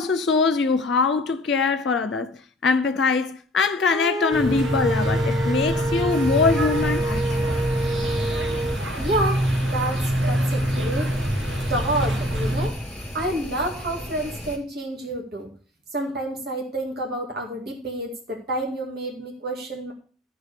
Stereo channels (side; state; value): both; normal; correlation 0.51